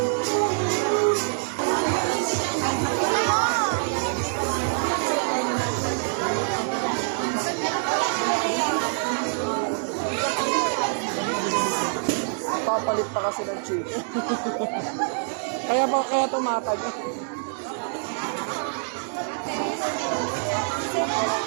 Papalit pa kasi ng chicken. kaya tumatag.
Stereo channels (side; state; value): left; silent; digital silence